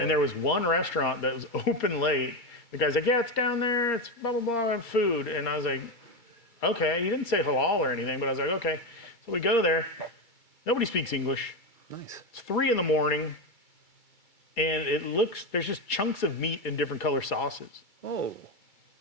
there was one restaurant that was open late. The guy's like, yeah, it's down there. It's blah, blah, blah, and food. And I was like, okay. He didn't say halal or anything, but I was like, okay. So we go there. Nobody speaks English. Nice. It's 3 a.m. And there's just chunks of meat in different color sauces. Oh.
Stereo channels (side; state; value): right; late; 2.3 ms